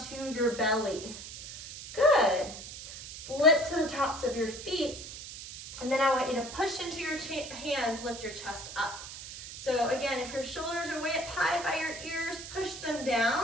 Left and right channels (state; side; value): noise; right; hiss, 11 dB below the sound